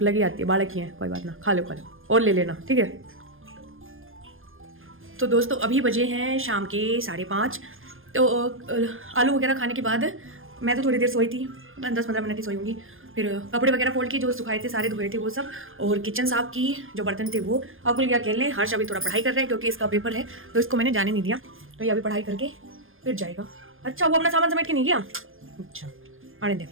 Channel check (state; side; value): late; left; 0.59 ms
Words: लगी आती है, बालक ही है, कोई बात ना, खा लो और ले लेना, ठीक है। तो दोस्तों अभी बजे हैं शाम के 5:30। तो आलू वगैरह खाने के बाद मैं तो थोड़ी देर सोई थी, 10-15 मिनट ही सोई होंगी। फिर कपड़े वगैरह फोल्ड किए, जो सुखाए थे सारे धोए थे वो सब, और किचन साफ की, जो बर्तन थे वो। अकुल क्या खेलने, हर्ष अभी थोड़ा पढ़ाई कर रहे हैं क्योंकि इसका पेपर है, तो इसको मैंने जाने नहीं दिया, तो ये अभी पढ़ाई करके फिर जाएगा। अच्छा वो अपना सामान समेट के नहीं गया, अच्छा आने दे।